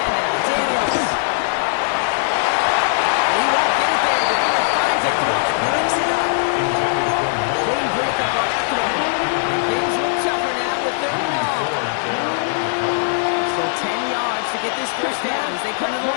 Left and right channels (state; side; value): silent; right; 58 dB below the other